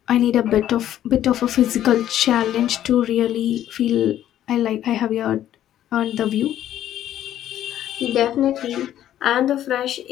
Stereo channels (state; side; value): quieter; right; 11.8 dB